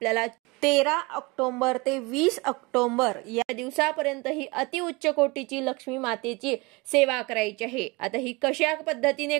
13 ऑक्टोबर ते 20 ऑक्टोबर या दिवसापर्यंत ही अतिउच्च कोटीची लक्ष्मी मातेची सेवा करायची आहे। आता ही कशा पद्धतीने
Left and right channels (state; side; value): quieter; left; 25.6 dB